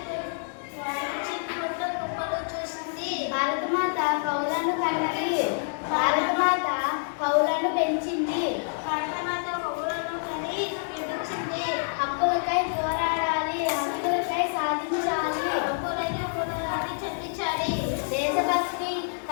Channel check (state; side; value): silent; right; digital silence